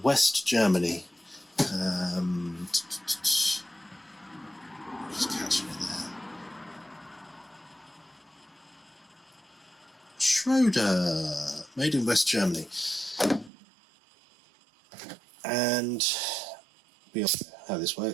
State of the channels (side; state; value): left; drops out; at 13.5 s